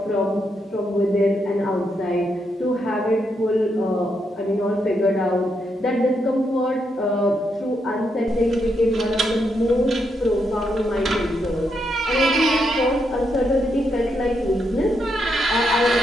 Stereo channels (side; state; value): both; normal; correlation 0.80